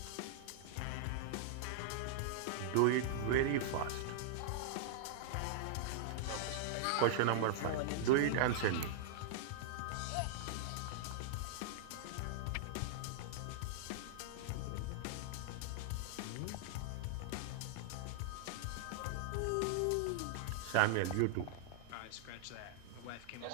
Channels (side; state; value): both; different; correlation -0.01